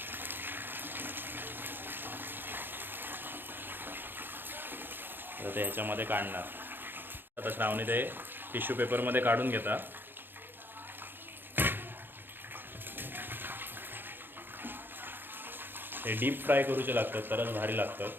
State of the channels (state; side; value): late; left; 0.098 ms